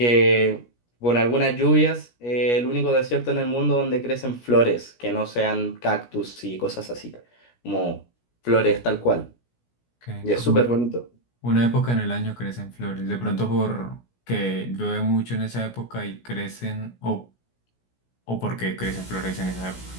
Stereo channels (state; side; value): late; right; 17 ms